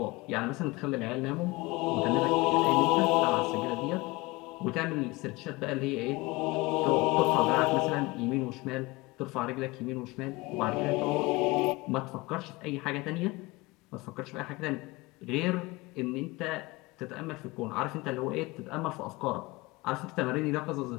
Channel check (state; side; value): quieter; right; 23.0 dB